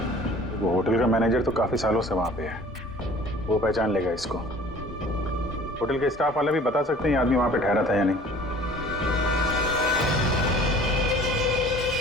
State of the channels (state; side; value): normal; both; correlation 0.48